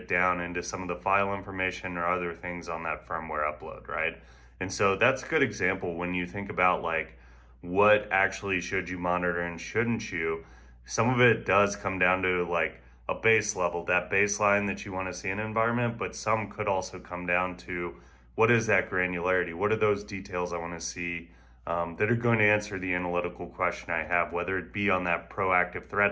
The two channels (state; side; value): identical; both; correlation 1.00